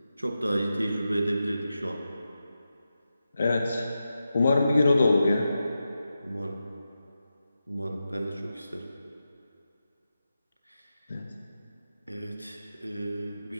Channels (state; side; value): inverted; both; correlation -0.90